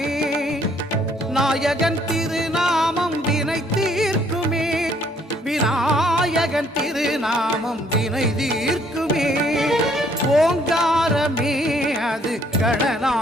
நாயகன் திருநாமம் வினை தீர்க்குமே. விநாயகன் திருநாமம் வினை தீர்க்குமே. ஓங்காரமே அது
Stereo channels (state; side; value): normal; both; correlation 0.65